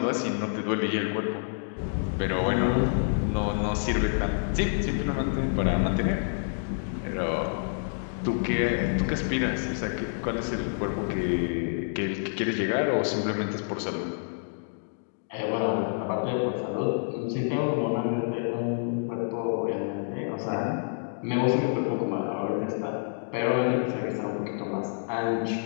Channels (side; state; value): right; silent; digital silence